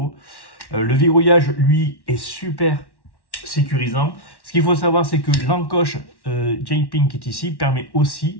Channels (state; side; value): late; right; 1.1 ms